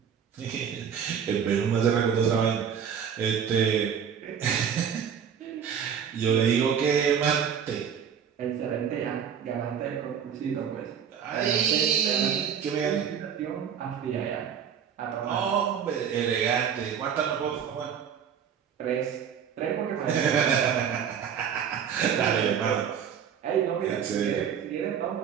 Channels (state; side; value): quieter; left; 7.9 dB